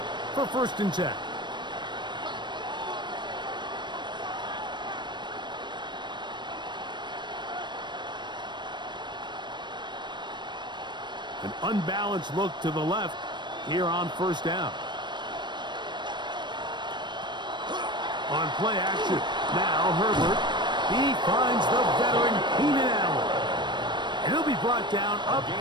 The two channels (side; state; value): left; late; 0.22 ms